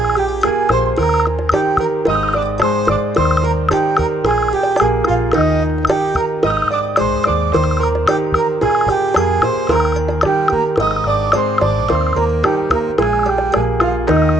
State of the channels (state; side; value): normal; both; correlation 0.74